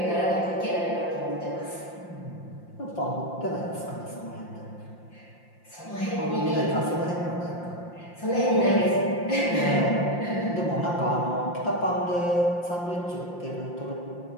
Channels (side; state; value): right; late; 5.7 ms